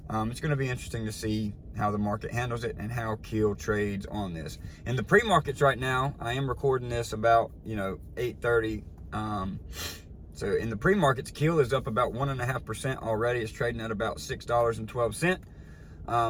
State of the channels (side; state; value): both; identical; correlation 1.00